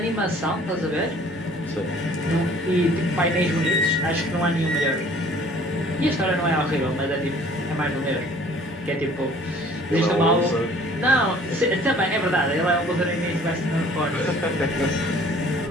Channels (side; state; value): both; normal; correlation 0.53